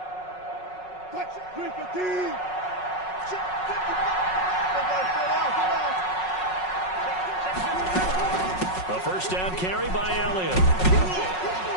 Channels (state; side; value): late; right; 5.4 ms